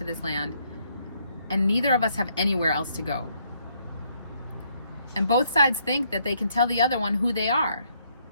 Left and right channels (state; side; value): inverted; both; correlation -0.70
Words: this land, and neither of us have anywhere else to go. And both sides think that they can tell the other one who they are,